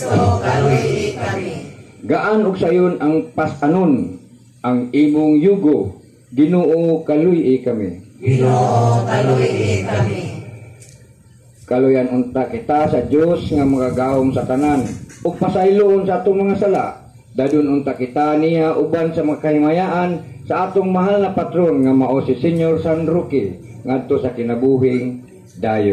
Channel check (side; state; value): both; identical; correlation 1.00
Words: kaluy kami. Gaan og sayon ang pasanon, ang imong yugo. Ginoo, kaluy kami. Ginoo, kaluy kami. Kaluyan unta kita sa Dios nga magagahom sa tanan ug pasayloon sa atong mga sala. Dadun unta kita niya uban sa mga kahimayaan sa atong mahal na patron nga mao si Senyor San Roque ngadto sa kinabuhing